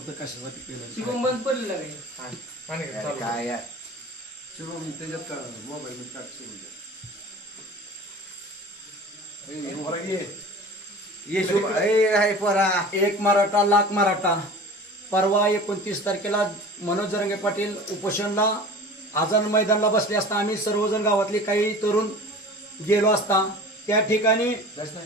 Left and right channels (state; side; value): normal; both; correlation 0.39